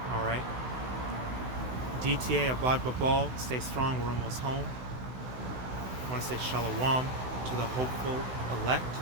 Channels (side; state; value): left; late; 16 ms